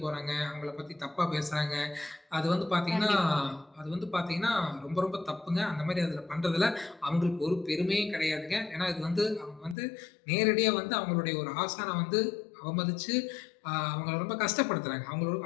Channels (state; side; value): drops out; right; at 9.8 s